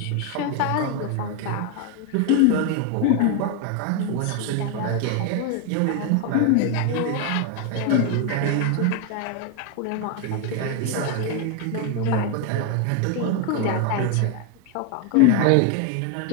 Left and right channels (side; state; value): both; different; correlation 0.01